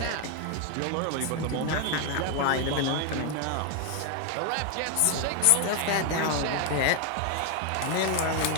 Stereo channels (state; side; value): different; both; correlation 0.01